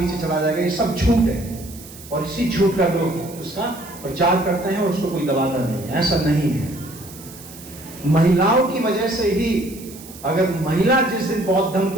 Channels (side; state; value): right; noise; hiss, 17 dB below the sound